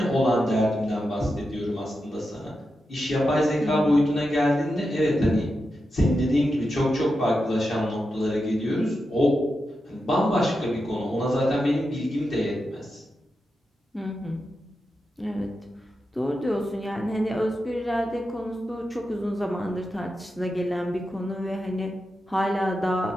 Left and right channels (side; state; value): both; normal; correlation 0.89